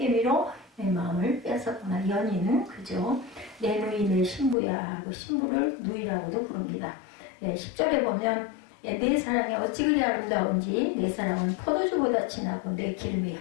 내 마음을 빼앗았구나. 연인 그죠. 내 누이 내 신부야 하고 신부를 누이라고도 부릅니다. 10절에 보면 내 사랑이 어찌 그리 아름다운지 내 사랑은 포도주보다 진하고 내 기름의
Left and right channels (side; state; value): right; drops out; at 4.5 s